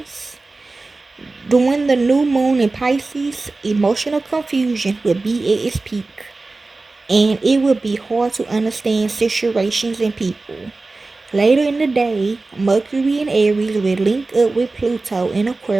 During the new moon in Pisces, emotional confusion will be at its peak, and it will be hard to understand situations and people. Later in the day, Mercury and Aries will link up with Pluto in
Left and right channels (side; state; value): left; quieter; 3.5 dB